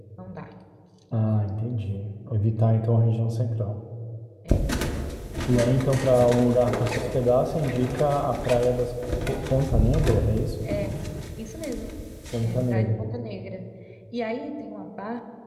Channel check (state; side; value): identical; both; correlation 1.00